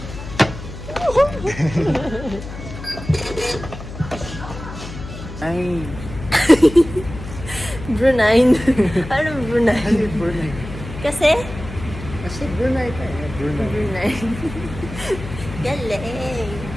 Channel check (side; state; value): left; noise; hum, 11 dB below the sound